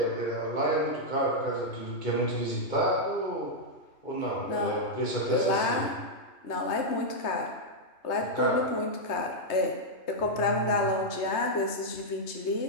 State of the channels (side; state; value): right; late; 3.2 ms